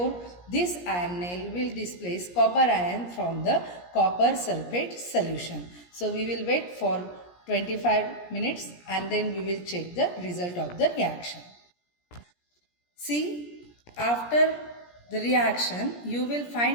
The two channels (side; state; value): right; late; 17 ms